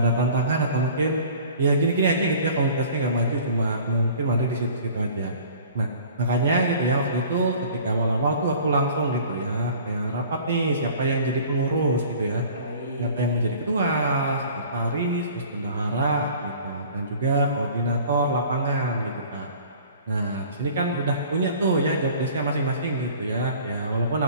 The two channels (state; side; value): inverted; both; correlation -0.48